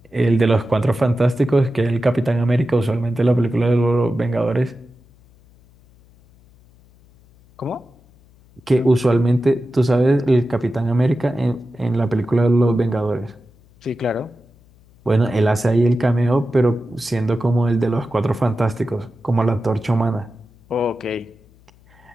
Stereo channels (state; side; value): noise; left; hum, 29 dB below the sound